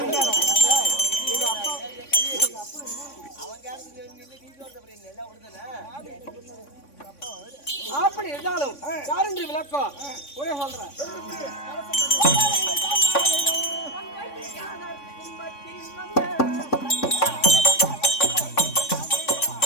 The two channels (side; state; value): right; late; 3.5 ms